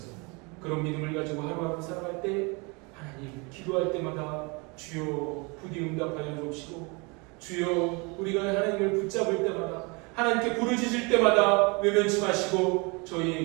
그런 믿음을 가지고 하루하루 살아갈 때 하나님 기도할 때마다 주여 부디 응답하여 주옵시고 주여 우리가 하나님을 붙잡을 때마다 하나님께 부르짖을 때마다 외면치 마시고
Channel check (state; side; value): quieter; left; 29.3 dB